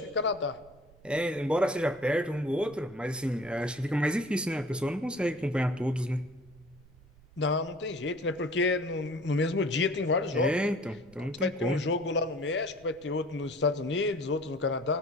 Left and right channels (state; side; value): noise; right; rumble, 26 dB below the sound